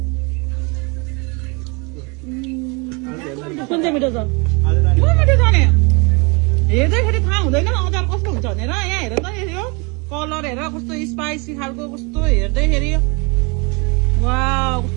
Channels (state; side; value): quieter; left; 30.1 dB